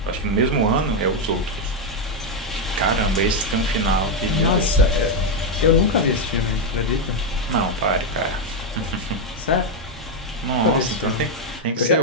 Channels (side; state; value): both; normal; correlation 0.03